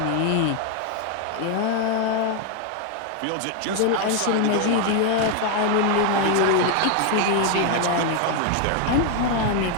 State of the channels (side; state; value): both; different; correlation 0.01